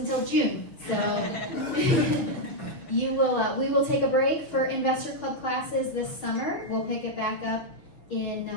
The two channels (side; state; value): right; late; 6.7 ms